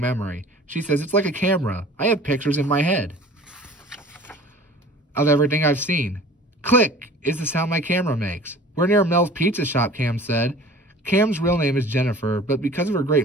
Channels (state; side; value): normal; both; correlation 0.45